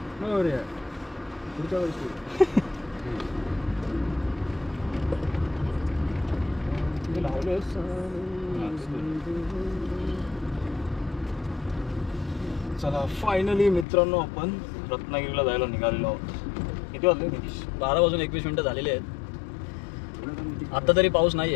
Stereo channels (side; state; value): right; drops out; at 13.9 s